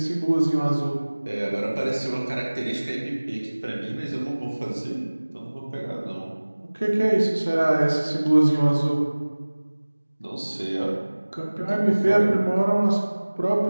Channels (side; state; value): both; inverted; correlation -1.00